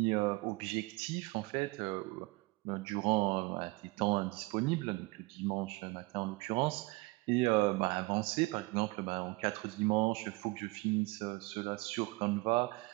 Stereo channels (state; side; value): quieter; left; 23.8 dB